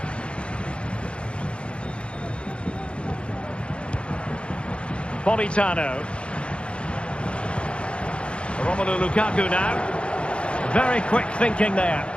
Politano. Romelu Lukaku now. Very quick thinking there.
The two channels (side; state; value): right; late; 0.057 ms